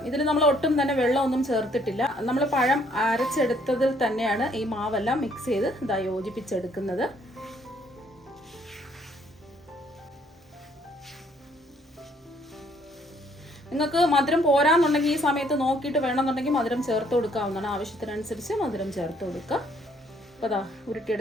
ഇതിൽ നമ്മൾ ഒട്ടും തന്നെ വെള്ളമൊന്നും ചേർത്തിട്ടില്ല. നമ്മൾ പഴം അരച്ചെടുത്തതിൽ തന്നെയാണ് ഈ മാവെല്ലാം മിക്സ് ചെയ്ത് യോജിപ്പിച്ചെടുക്കുന്നത്. നിങ്ങൾക്ക് മധുരം പോരാന്നുണ്ടെങ്കിൽ ഈ സമയത്ത് നോക്കിയിട്ട് വേണമെന്നുണ്ടെങ്കിൽ മധുരം ചേർത്ത് കൊടുക്കാവുന്നതാണ്. ആവശ്യത്തിനനുസരിച്ച് മധുരം ചേർത്ത് കൊടുക്കുക. അപ്പോൾ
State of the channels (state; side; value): normal; both; correlation 0.65